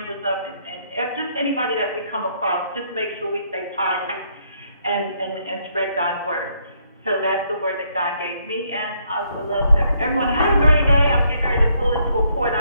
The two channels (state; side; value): inverted; both; correlation -0.71